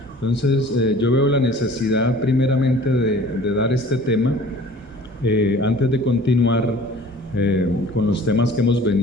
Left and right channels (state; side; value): normal; both; correlation 0.47